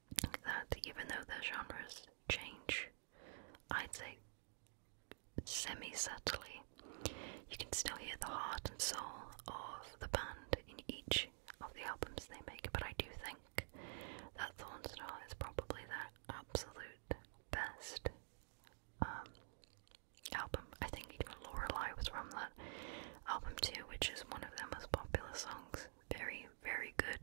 that, even though their genres change, I'd say semi-subtly, you can still hear the heart and soul of the band in each of the albums they make. But I do think that Thornstar is probably their absolute best album. I think even Lorelei was from that album too, which is one of their most popular songs. Very, very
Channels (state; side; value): silent; left; digital silence